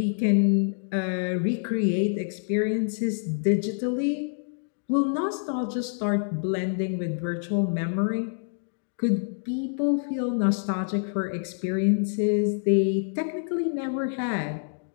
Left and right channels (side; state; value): right; silent; digital silence